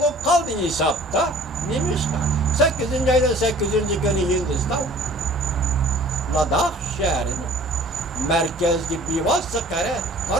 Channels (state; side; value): normal; both; correlation 0.50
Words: kaldı hesapta. Neymiş ki? 8. ayda 8. günü Hindistan. Ladakh şehrini. Merkez gibi vasıkare.